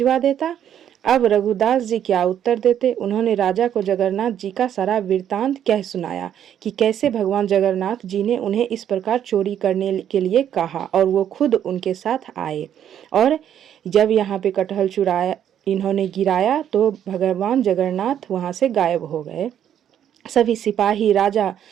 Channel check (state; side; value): quieter; left; 9.9 dB